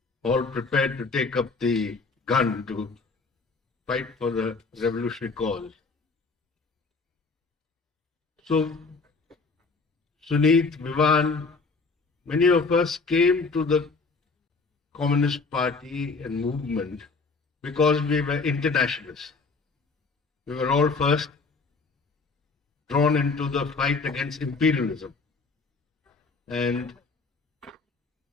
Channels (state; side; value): quieter; right; 4.2 dB